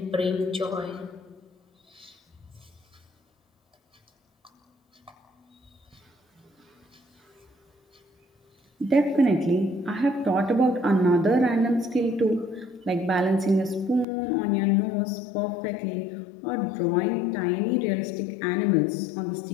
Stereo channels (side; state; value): right; drops out; at 14.1 s